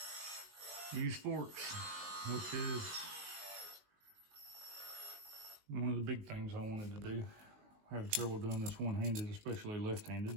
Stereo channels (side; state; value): left; late; 19 ms